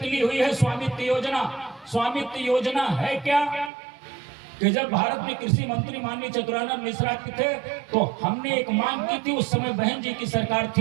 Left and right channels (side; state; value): left; drops out; at 3.7 s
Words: हुई है, स्वामित्व योजना। स्वामित्व योजना है क्या कि जब भारत में कृषि मंत्री माननीय चतुरानंद मिश्रा के थे, तो हमने एक मांग की थी, उस समय बहन जी की सरकार